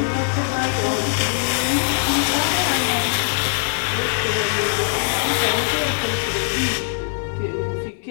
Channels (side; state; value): right; silent; 65 dB below the other